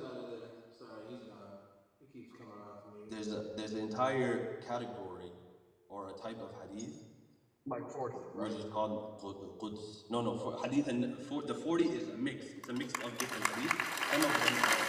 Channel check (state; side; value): identical; both; correlation 1.00